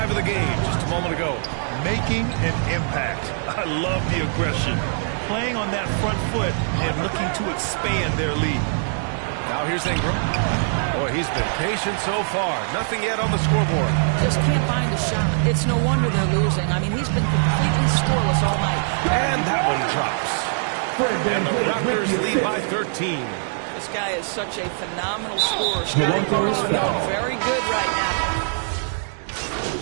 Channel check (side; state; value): left; silent; digital silence